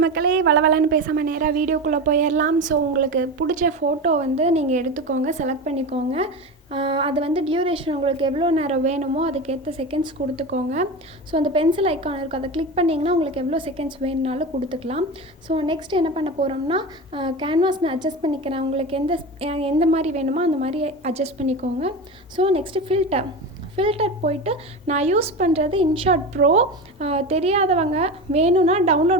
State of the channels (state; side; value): normal; both; correlation 0.24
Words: மக்களே. வளவலன்னு பேசாமல் நேராக வீடியோக்குள்ளே போயிடலாம். ஸோ உங்களுக்கு பிடிச்ச ஃபோட்டோ வந்து நீங்கள் எடுத்துக்கோங்க, செலக்ட் பண்ணிக்கோங்க. அது வந்து டியூரேஷன் உங்களுக்கு எவ்வளோ நேரம் வேணுமோ அதுக்கேற்ற செகண்ட்ஸ் கொடுத்துக்கோங்க. ஸோ அந்த பென்சில் ஐக்கான் இருக்கும், அதை கிளிக் பண்ணிங்கன்னா உங்களுக்கு எவ்வளோ செகண்ட்ஸ் வேணுனாலும் கொடுத்துக்கலாம். ஸோ நெக்ஸ்ட் என்ன பண்ண போகிறோம்னா, கேன்வாஸ் நான் அட்ஜஸ்ட் பண்ணிக்கிறேன். உங்களுக்கு எந்த மாதிரி வேணுமோ அந்த மாதிரி அட்ஜஸ்ட் பண்ணிக்கோங்க. ஸோ நெக்ஸ்ட்டு ஃபில்டர் போயிட்டு நான் யூஸ் பண்ணுறது இன்ஷாட் ப்ரோ. தெரியாதவங்க வேணும்னா